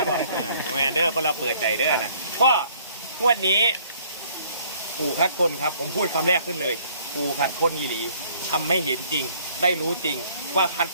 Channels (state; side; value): inverted; both; correlation -0.60